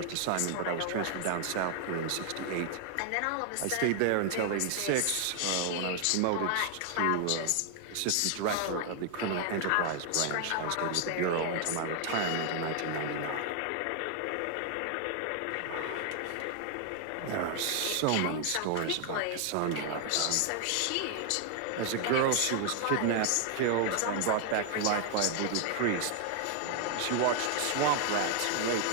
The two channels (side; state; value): both; different; correlation 0.00